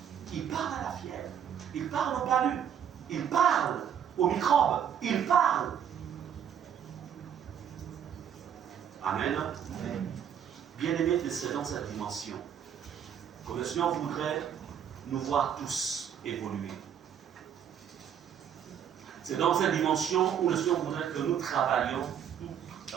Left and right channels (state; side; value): quieter; left; 8.8 dB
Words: Il parle à la fièvre, il parle au palu, il parle aux microbes, il parle. Amen. Bien-aimés, c'est dans cette dimension que le Seigneur voudrait nous voir tous évoluer. C'est dans cette dimension où le Seigneur voudrait que nous travaillions